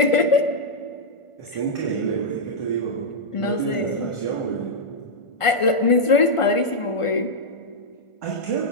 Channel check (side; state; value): right; late; 1.5 ms